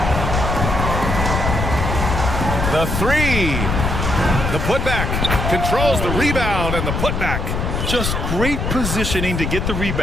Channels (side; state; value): left; noise; rumble, 1 dB below the sound